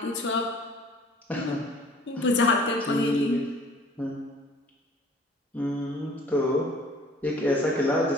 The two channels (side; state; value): both; normal; correlation 0.51